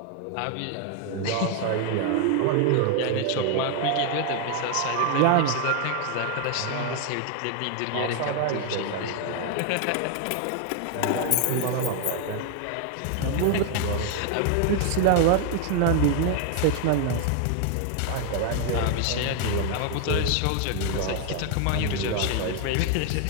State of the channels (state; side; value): different; both; correlation 0.00